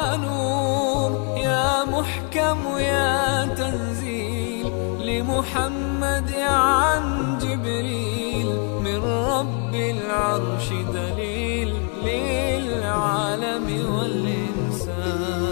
نور يا محكم يا تنزيل لمحمد عن جبريل، من رب العرش دليل للعالم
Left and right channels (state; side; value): quieter; right; 37.8 dB